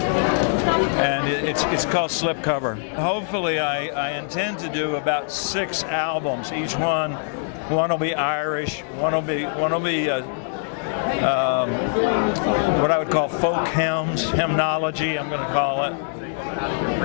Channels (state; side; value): silent; right; digital silence